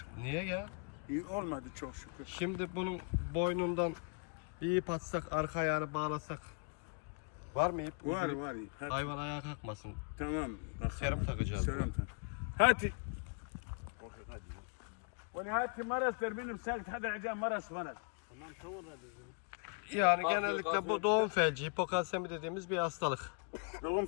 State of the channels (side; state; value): right; quieter; 38.1 dB